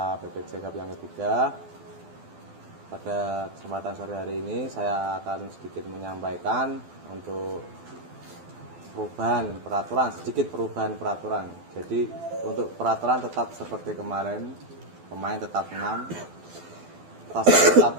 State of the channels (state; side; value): late; left; 12 ms